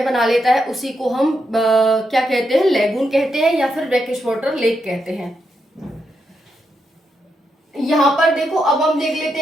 बना लेता है। उसी को हम क्या कहते हैं? लेगून कहते हैं, या फिर ब्रैकिश वाटर लेक कहते हैं। यहाँ पर देखो, अब हम देख लेते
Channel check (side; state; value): both; normal; correlation 0.83